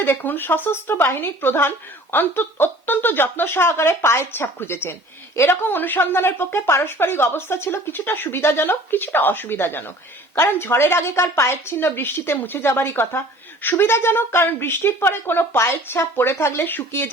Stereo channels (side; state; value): both; normal; correlation 0.48